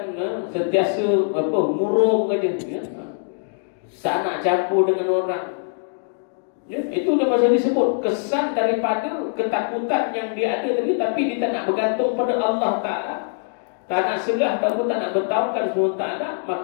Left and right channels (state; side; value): silent; right; 64 dB below the other